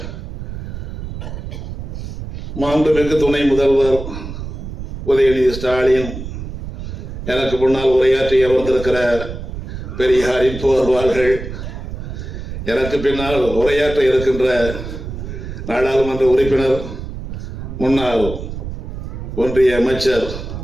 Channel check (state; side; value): noise; right; rumble, 8 dB below the sound